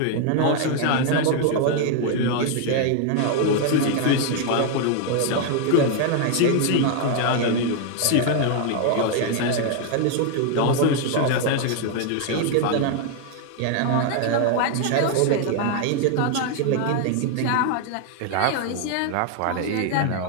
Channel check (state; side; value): different; both; correlation 0.00